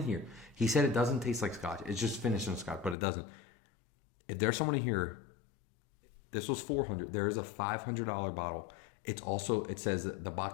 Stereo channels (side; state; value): right; drops out; at 3.0 s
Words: here, he said it doesn't taste like scotch. It's just finished in scotch, but it doesn't. If there's someone in here, this was $400. There is a $500 bottle. It's also, it says the